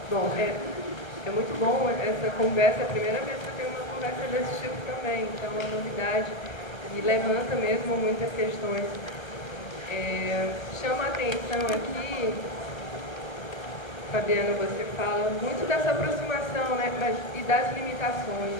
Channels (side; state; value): right; late; 1.3 ms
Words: Bom, é muito bom essa conversa, é a primeira vez que eu tenho uma conversa desse tipo também, então é uma novidade e levanta mesmo muitas questões. Chama a atenção aqui, Fabiana, você fala muito dessa aproximação, né, e das limitações,